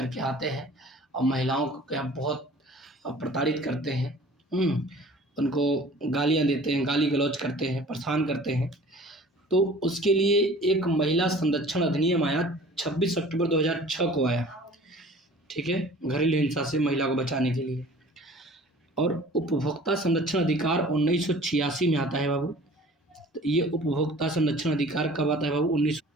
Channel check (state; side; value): normal; both; correlation 0.47